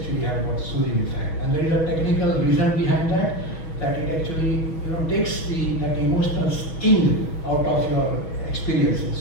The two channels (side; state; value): right; late; 6.2 ms